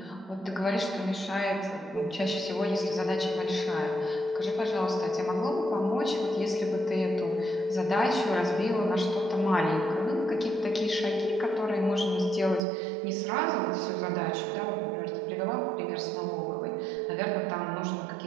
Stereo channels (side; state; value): left; drops out; at 12.7 s